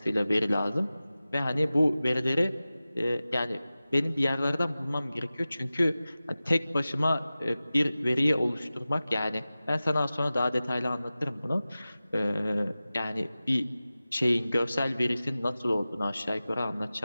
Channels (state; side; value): inverted; both; correlation -0.96